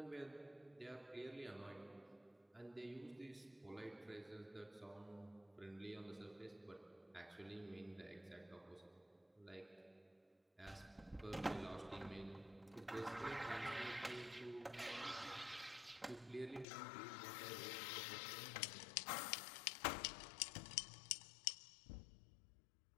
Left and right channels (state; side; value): drops out; right; at 16.7 s